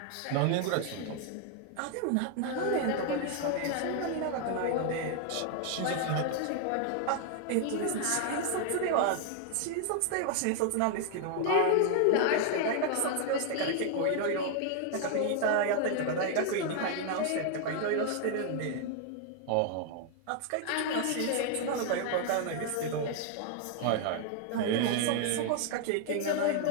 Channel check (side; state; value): both; different; correlation 0.00